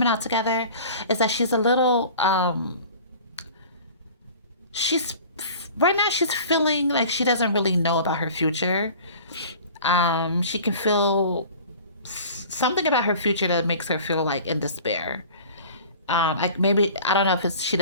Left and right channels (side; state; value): both; inverted; correlation -0.43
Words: out together is that she's a little she's right now she's feeling like she doesn't really know about her future. She can feel something about her future that makes her feel like in despair. Like maybe I don't know if it's she